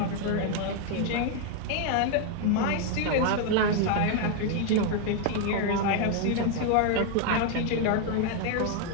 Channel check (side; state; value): both; different; correlation 0.00